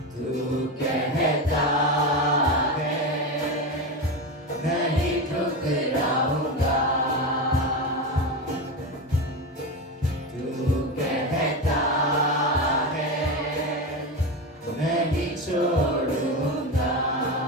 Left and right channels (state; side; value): normal; both; correlation 0.18